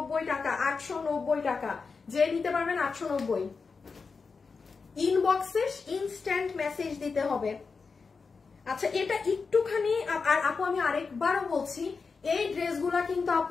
টাকা, 890 টাকা। যে নিতে পারবেন 890। ইনবক্সে ইনস্ট্যান্ট মেসেজ দিতে হবে। আচ্ছা, এটা একটুখানি, আর আপু আমি আরেকবারও বলছি, এই ড্রেসগুলা কিন্তু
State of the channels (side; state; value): right; quieter; 4.8 dB